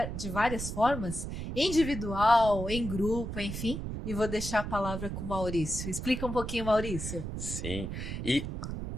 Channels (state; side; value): noise; right; rumble, 5 dB below the sound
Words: várias formas? Individual, em grupo, enfim? E vou deixar a palavra com o Maurício. Explica um pouquinho, Maurício. Sim, e